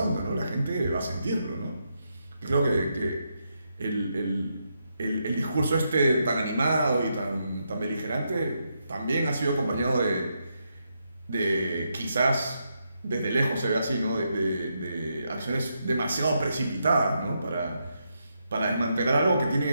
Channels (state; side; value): inverted; both; correlation -0.82